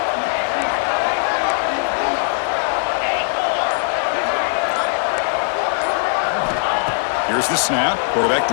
Here's the snap. Quarterback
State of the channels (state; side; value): silent; right; 59 dB below the other